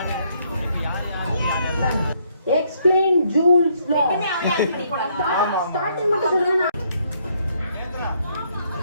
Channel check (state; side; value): inverted; both; correlation -0.70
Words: Explain Jules law. Starting மட்டும் சொல்லுங்க.